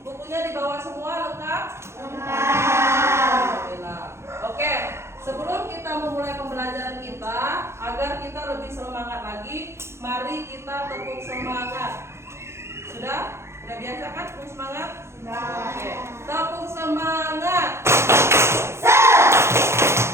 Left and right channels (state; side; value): late; left; 0.13 ms